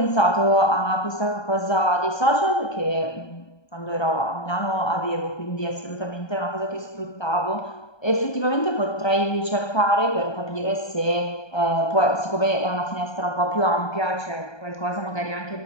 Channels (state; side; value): late; right; 1.2 ms